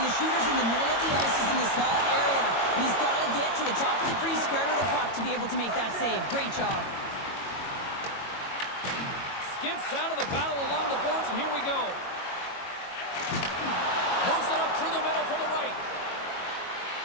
the shooter's in the middle of the ice, is in the small area, and he's got to get to the top of the crease square to the puck to be able to make that save. Great job. Skips out of the battle along the boards, and here we go. Moves it up through the middle from the right.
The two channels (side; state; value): right; late; 22 ms